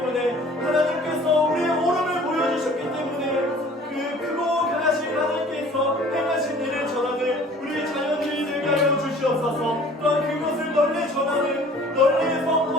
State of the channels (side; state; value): both; normal; correlation 0.50